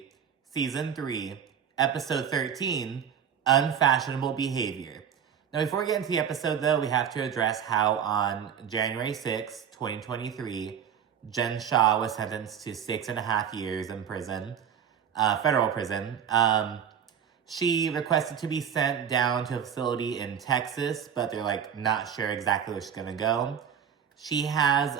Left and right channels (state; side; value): quieter; left; 8.1 dB